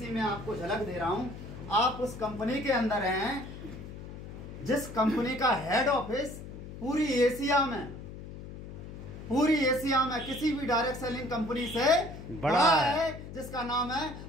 मैं आपको झलक दे रहा हूं। आप उस कंपनी के अंदर हैं जिस कंपनी का हेड ऑफिस पूरी एशिया में किसी भी डायरेक्ट सेलिंग कंपनी से बड़ा है, जिसका नाम है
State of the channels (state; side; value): noise; left; hum, 12 dB below the sound